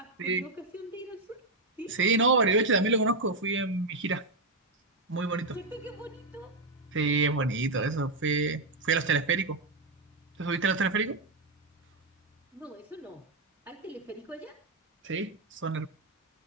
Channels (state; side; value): quieter; left; 3.1 dB